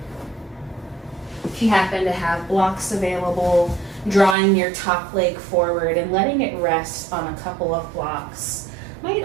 If you happen to have blocks available, drawing your top leg forward and letting it rest on a couple of blocks might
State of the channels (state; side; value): drops out; left; at 4.4 s